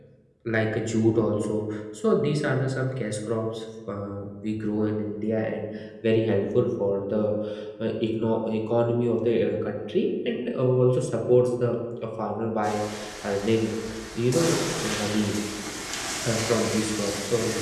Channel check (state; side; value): identical; both; correlation 1.00